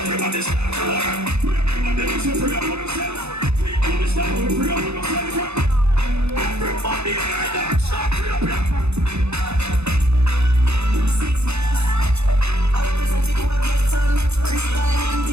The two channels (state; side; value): late; left; 0.80 ms